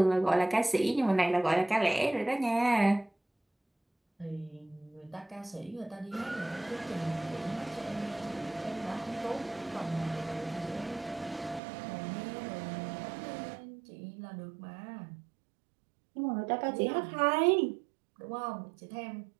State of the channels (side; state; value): left; drops out; at 11.6 s